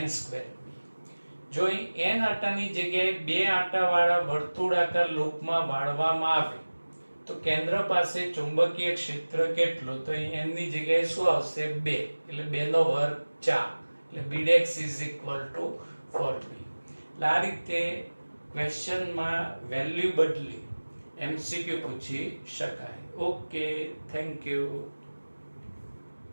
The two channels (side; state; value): both; inverted; correlation -1.00